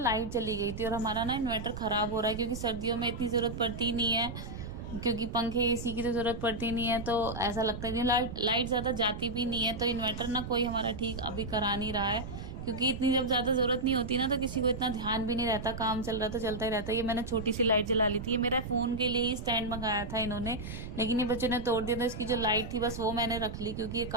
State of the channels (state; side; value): noise; right; rumble, 8 dB below the sound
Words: चली गई थी और हमारा ना इन्वर्टर खराब हो रहा है, क्योंकि सर्दियों में इतनी जरूरत पड़ती नहीं है, क्योंकि पंखे एसी की तो जरूरत पड़ती नहीं है। तो ऐसा लगता है कि लाइट लाइट ज्यादा जाती भी नहीं है। तो इन्वर्टर ना कोई हमारा ठीक अभी करा नहीं रहा है, क्योंकि इतनी जब ज्यादा जरूरत नहीं होती ना, तो किसी को इतना ध्यान भी नहीं रहता, काम चल रहा तो चलता ही रहता है। ये मैंने छोटी सी लाइट जला ली थी, ये मेरा फोन के लिए ही स्टैंड मंगाया था इन्होंने, लेकिन ये बच्चों ने तोड़ दिया। तो इसकी जो लाइट थी बस वो मैंने रख ली, क्योंकि ये